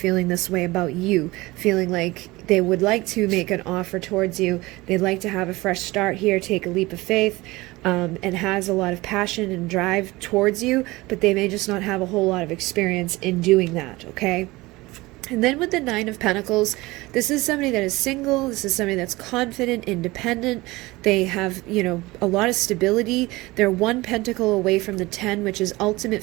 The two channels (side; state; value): left; quieter; 20.9 dB